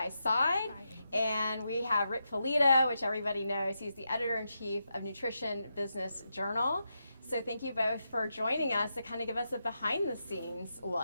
Side. And we have Rick Polito, which everybody knows. He's the Editor-in-Chief of Nutrition Business Journal. So thank you both for joining us to kind of give us a behind-the-scenes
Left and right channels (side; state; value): both; inverted; correlation -0.85